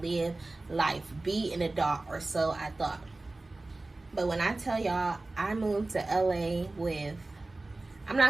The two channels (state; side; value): quieter; left; 3.0 dB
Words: live life, be an adult, or so I thought. But when I tell y'all, I moved to LA with, I'm